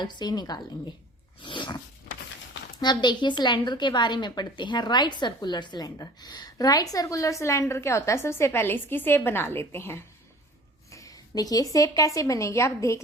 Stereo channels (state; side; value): normal; both; correlation 0.46